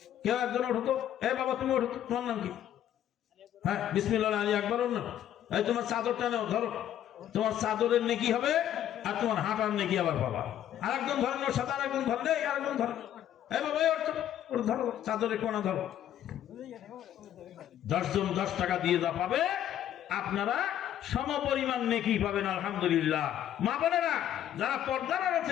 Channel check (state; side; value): quieter; right; 11.0 dB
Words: কেউ একজন ওঠো তো। বাবা তুমি ওঠো, তোমার নাম কি? হ্যাঁ, বিসমিল্লাহ আলী আকবর। এই তোমার চাদরটা নাও, ধরো। তোমার চাদরের নেকি হবে আর তোমার হাঁটার নেকি আবার পাবা। আরেকজন ধরেন, ওর সাথে আরেকজন ধরেন, আরেকজন ধরেন। বাবা ওর ধরো, চাদরের কোনা ধরো। 10 জন 10 টাকা দিয়ে যা পাবে, আপনারা সমপরিমাণ নেকি পাবেন। আলহামদুলিল্লাহ। মা বোনেরা যারা পর্দার আড়াল